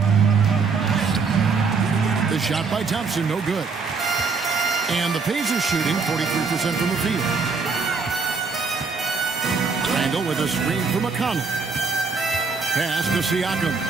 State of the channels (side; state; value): left; quieter; 4.8 dB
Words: The shot by Thompson, no good. And the Pacers shooting 43% from the field. Randall with a screen for McConnell. Pass to Siakam.